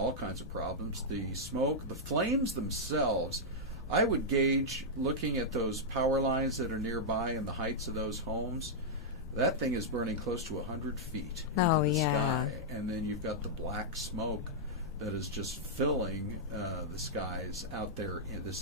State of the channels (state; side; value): noise; left; rumble, 13 dB below the sound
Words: kinds of problems. The smoke, the flames themselves, I would gauge, looking at those power lines that are nearby and the heights of those homes, that thing is burning close to 100 feet into the sky. And then you've got the black smoke that is just filling the skies out there. And this